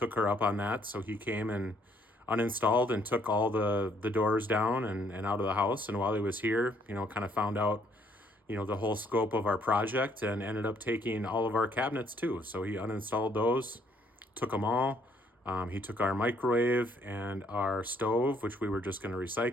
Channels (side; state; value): both; normal; correlation 0.66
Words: her up on that. So he came and uninstalled and took all the doors down and out of the house. And while he was here, kind of found out, the whole scope of our project and ended up taking all of our cabinets too. So he uninstalled those, took them all. He took our microwave and our stove, which we were just going to